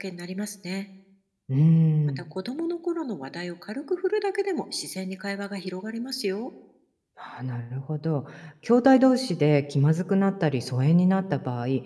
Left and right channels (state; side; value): identical; both; correlation 1.00